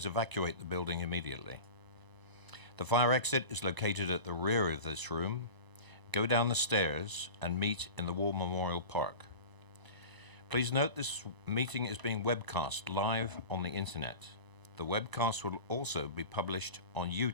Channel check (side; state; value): left; late; 1.0 ms